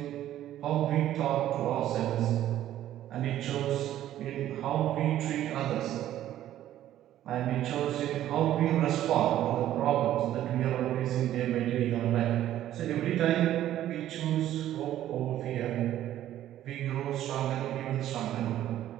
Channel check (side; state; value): left; quieter; 12.6 dB